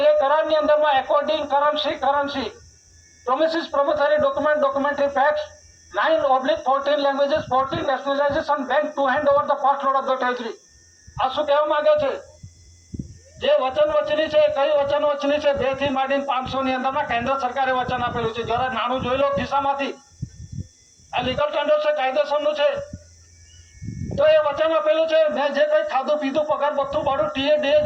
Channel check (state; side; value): identical; both; correlation 1.00